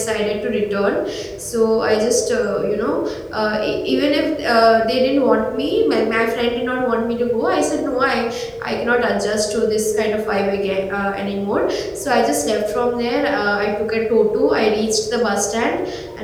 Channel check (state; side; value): identical; both; correlation 1.00